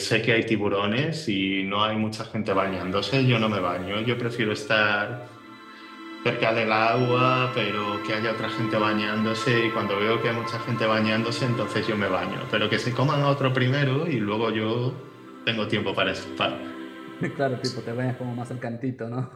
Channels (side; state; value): both; identical; correlation 1.00